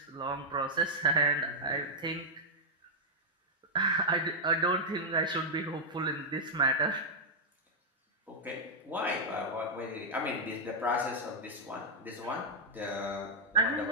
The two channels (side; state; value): both; normal; correlation -0.05